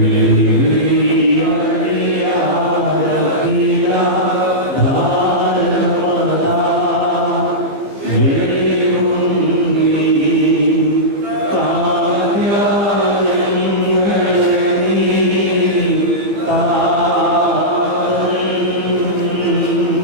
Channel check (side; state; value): left; late; 15 ms